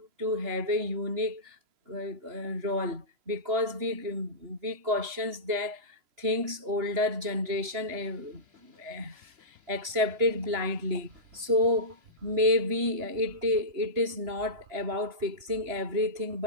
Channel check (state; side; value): late; left; 3.0 ms